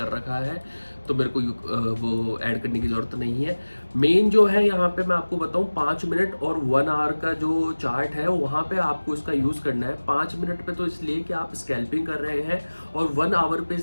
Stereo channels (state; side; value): inverted; both; correlation -1.00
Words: रखा है, तो मेरे को वो ऐड करने की ज़रूरत नहीं है। मेन जो है यहाँ पे मैं आपको बताऊँ, 5 मिनट और 1 आवर का जो चार्ट है वहाँ पे आपको इसका यूज़ करना है। 5 मिनट पे तो इसलिए कि आप स्कैल्पिंग कर रहे हैं, और 1 आवर पे